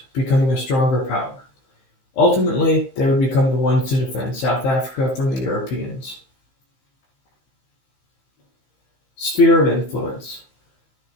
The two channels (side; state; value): right; late; 15 ms